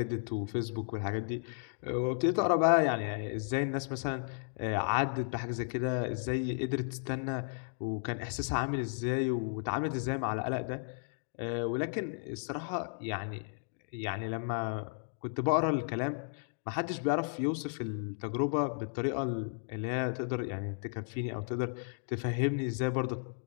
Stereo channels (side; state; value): right; silent; digital silence